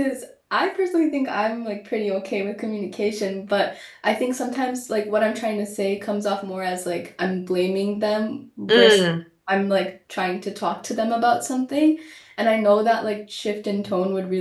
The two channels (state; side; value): identical; both; correlation 1.00